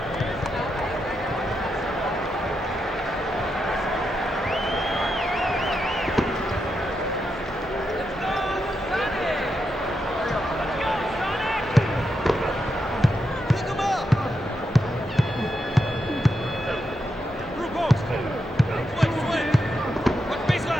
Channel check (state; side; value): normal; both; correlation 0.84